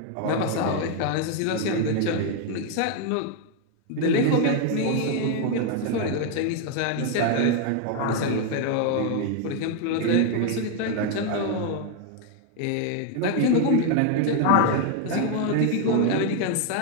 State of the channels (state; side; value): different; both; correlation 0.01